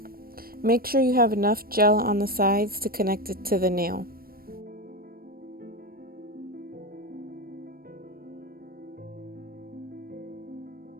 Make sure you have enough gel on the sides to connect it to the nail.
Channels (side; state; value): left; late; 0.43 ms